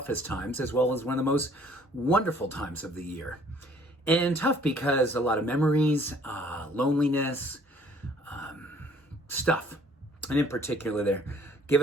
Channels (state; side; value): normal; both; correlation 0.59